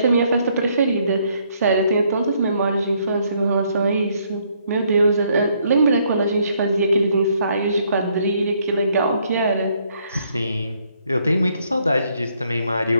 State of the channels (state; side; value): inverted; both; correlation -0.70